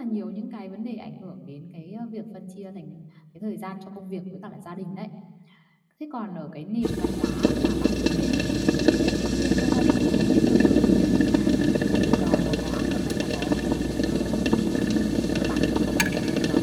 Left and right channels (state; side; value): identical; both; correlation 1.00